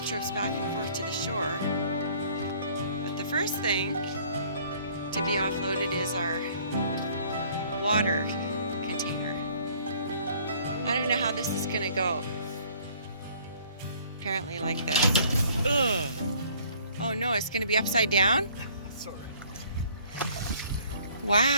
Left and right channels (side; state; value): both; inverted; correlation -0.56